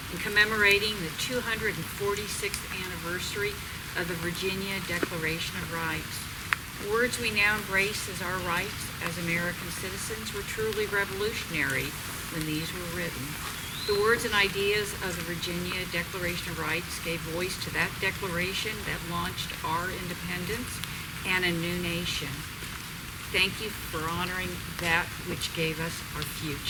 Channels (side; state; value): both; identical; correlation 1.00